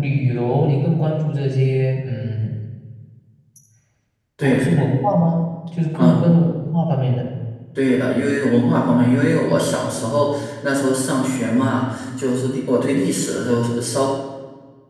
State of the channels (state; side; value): identical; both; correlation 1.00